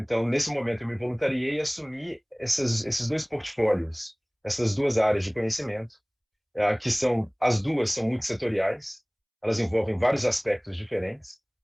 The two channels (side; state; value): both; identical; correlation 1.00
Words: nesse momento, eu me voluntariei e assumi esses 2 portfólios, essas 2 áreas de conhecimento, que as duas são multissetoriais, elas envolvem vários aspectos diferentes